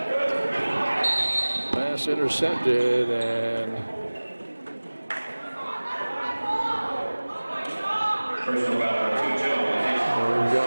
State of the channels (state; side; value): inverted; both; correlation -1.00